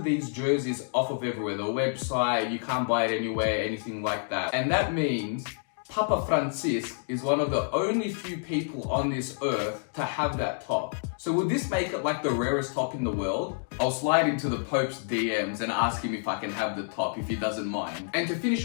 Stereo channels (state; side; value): silent; right; digital silence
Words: these jerseys off of everywhere. The website, you can't buy it anywhere, anything like that. And that means Papa Francis is one of the only few people on this earth to have that top. So would this make it like the rarest top in the world? I'll slide into the Pope's DMs and ask him if I can have the top, if he doesn't mind. And to finish